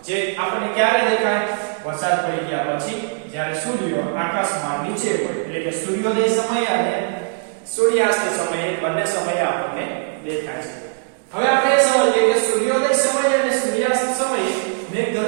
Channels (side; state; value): left; silent; digital silence